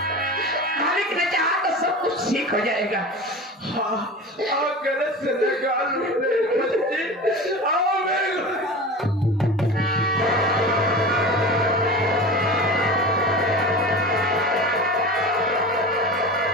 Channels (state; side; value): normal; both; correlation 0.32